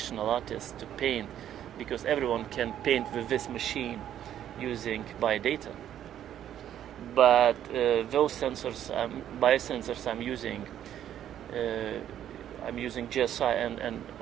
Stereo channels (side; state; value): left; quieter; 10.7 dB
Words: artist to paint, because everyone can paint with this machine using biodata. But those sensors, biosensors I'm using GSI and